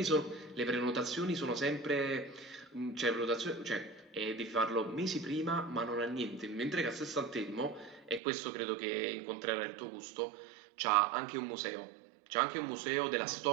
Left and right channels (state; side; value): drops out; left; at 8.2 s